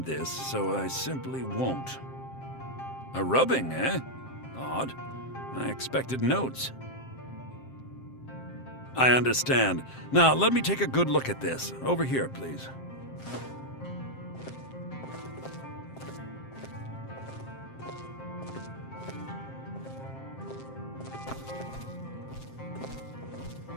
this, so I simply won't. A rubbing, eh? Odd. I expected notes. I understand. Now, let me take a good look at this. Over here, please.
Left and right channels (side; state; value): right; late; 7.6 ms